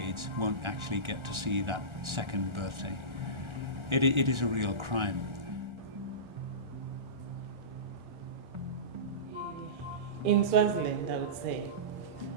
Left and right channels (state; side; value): late; left; 1.3 ms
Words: won't actually get to see that second birthday, it is a real crime. In Swaziland, I would say,